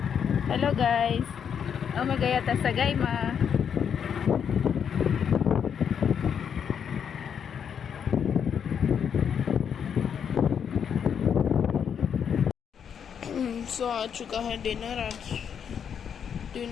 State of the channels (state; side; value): quieter; right; 7.7 dB